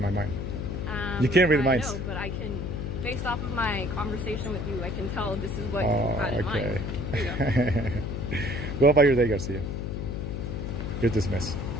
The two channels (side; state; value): left; noise; hum, 4 dB below the sound